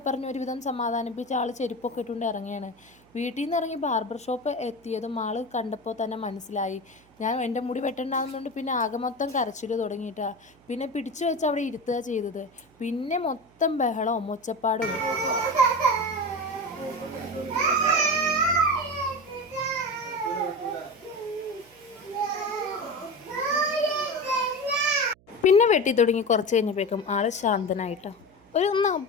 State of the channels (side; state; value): right; noise; hum, 30 dB below the sound